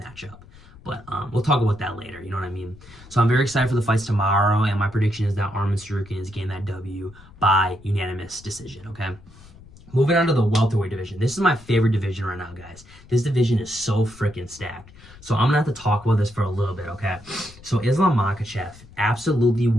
But we'll talk about that later, you know what I mean? So I'm very excited for the fights tomorrow, and my prediction is that Arman Tsarukyan is getting that W by unanimous decision, okay? Moving on to the welterweight division. This is my favorite division right now, guys. This division is so freaking stacked. So I'm going to have to talk about this for a little bit, okay? So Islam Makhachev absolutely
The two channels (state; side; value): noise; left; rumble, 22 dB below the sound